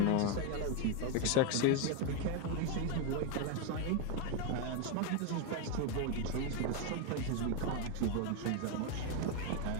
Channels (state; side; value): different; both; correlation 0.01